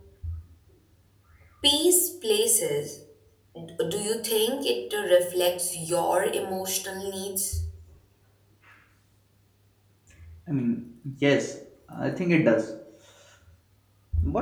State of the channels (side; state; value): both; identical; correlation 1.00